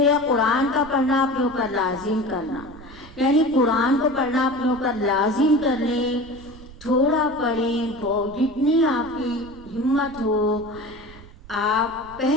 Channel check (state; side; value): noise; right; rumble, 19 dB below the sound